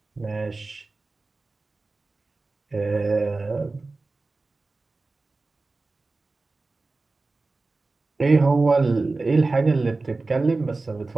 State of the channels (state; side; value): quieter; left; 3.5 dB